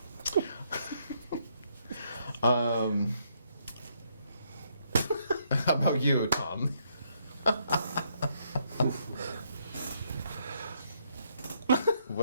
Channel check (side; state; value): both; inverted; correlation -0.73